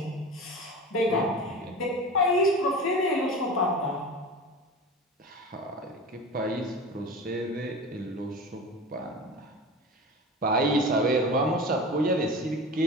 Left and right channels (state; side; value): normal; both; correlation 0.32